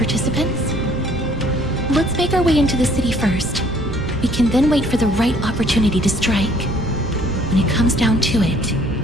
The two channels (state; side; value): noise; right; rumble, 11 dB below the sound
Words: Let's make our way into the city first. We can then wait for the right opportunity to strike. When it comes down to it,